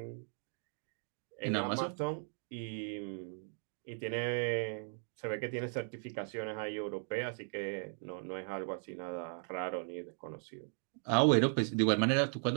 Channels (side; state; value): left; silent; 53 dB below the other